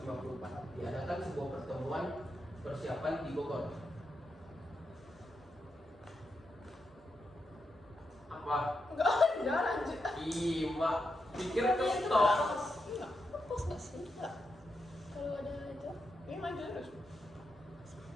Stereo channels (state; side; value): normal; both; correlation 0.85